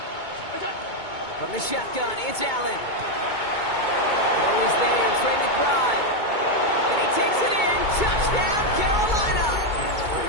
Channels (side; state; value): right; late; 2.2 ms